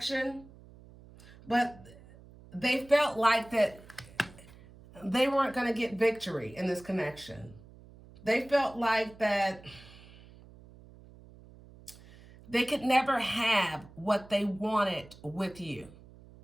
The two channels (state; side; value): noise; right; hum, 22 dB below the sound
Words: but they felt like that they weren't going to get victory in this connection. They felt like that they could never have what they wanted with you